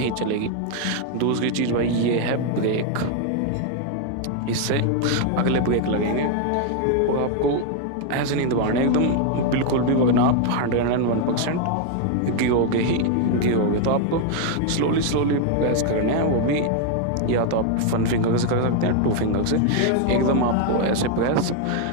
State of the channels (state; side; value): different; both; correlation 0.00